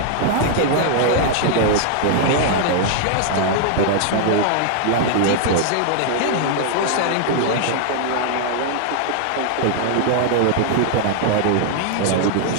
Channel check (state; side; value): different; both; correlation 0.00